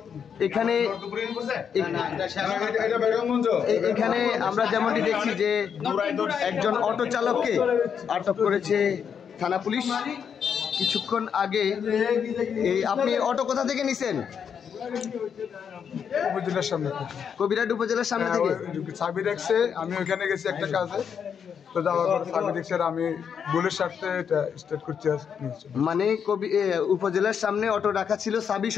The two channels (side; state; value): right; quieter; 7.4 dB